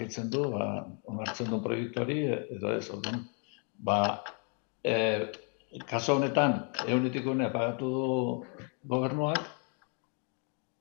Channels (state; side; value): quieter; right; 39.4 dB